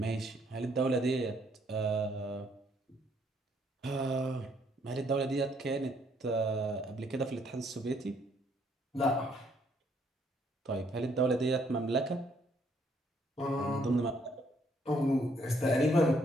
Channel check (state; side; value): normal; both; correlation 0.69